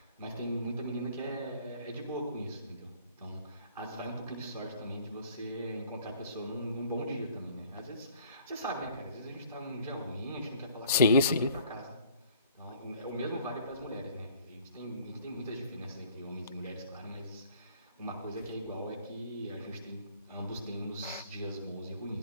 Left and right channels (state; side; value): inverted; both; correlation -0.55